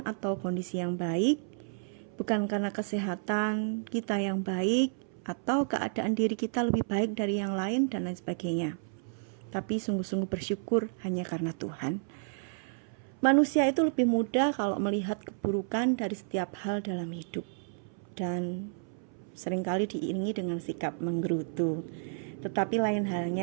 atau kondisi yang baik, bukan karena kesehatan kita yang baik, atau keadaan diri kita lebih baik dari yang lain dan lain sebagainya. Tapi sungguh-sungguh bersyukur hanya karena Tuhan. Manusia itu lebih mudah kalau melihat keburukan dari setiap hal dalam hidup, dan seringkali diiringi dengan sikap menggerutu. Tetapi lain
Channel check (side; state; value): left; silent; 57 dB below the other